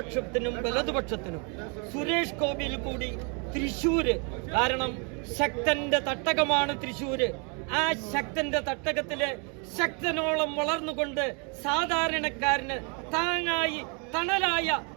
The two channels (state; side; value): quieter; left; 35.3 dB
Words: വലതുപക്ഷത്തിനും സുരേഷ് ഗോപിയിൽ കൂടി തൃശ്ശൂര്, കാരണം ശക്തന്റെ തട്ടകമാണ് തൃശ്ശൂര്, ആ ശക്തന്റെ തട്ടകത്തില് ശക്തനോളം വളർന്നുകൊണ്ട് സാധാരണക്കാരന് താങ്ങായി തണലായ